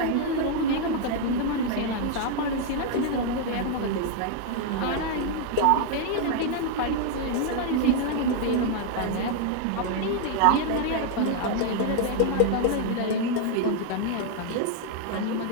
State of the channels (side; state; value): both; different; correlation 0.00